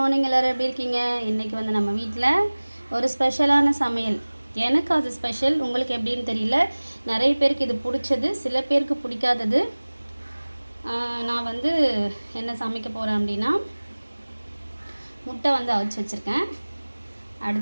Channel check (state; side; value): inverted; both; correlation -1.00